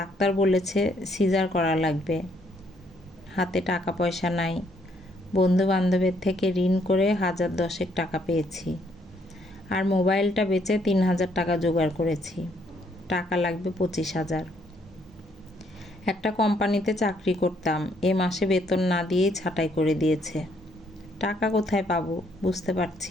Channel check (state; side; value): normal; both; correlation 0.69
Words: বলেছে সিজার করা লাগবে। হাতে টাকা পয়সা নাই। বন্ধু বান্ধবের থেকে ঋণ করে 1010 টাকা পেয়েছি। আর মোবাইলটা বেচে 3000 টাকা জোগাড় করেছি। টাকা লাগবে 25,000। একটা কোম্পানিতে চাকরি করতাম, এ মাসে বেতন না দিয়েই ছাঁটাই করে দিয়েছে। টাকা কোথায় পাবো বুঝতে